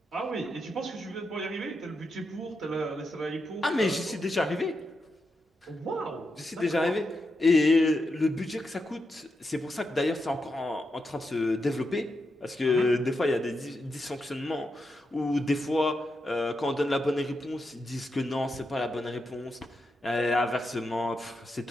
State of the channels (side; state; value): both; normal; correlation 0.86